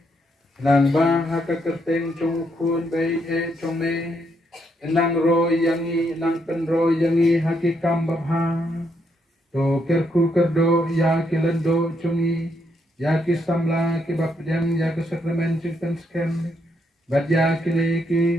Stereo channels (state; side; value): normal; both; correlation 0.76